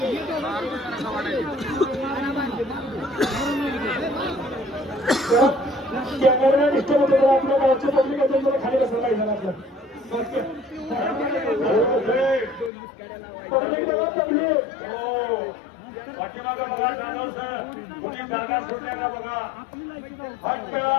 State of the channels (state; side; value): drops out; right; at 12.7 s